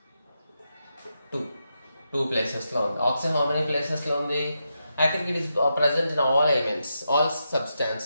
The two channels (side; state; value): both; inverted; correlation -0.85